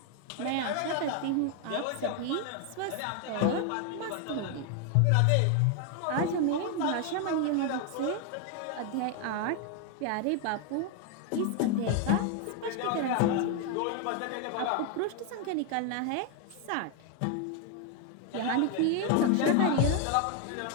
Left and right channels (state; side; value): different; both; correlation 0.01